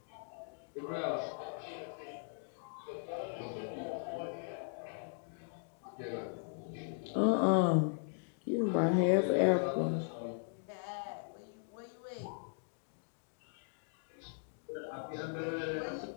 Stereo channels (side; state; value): right; silent; digital silence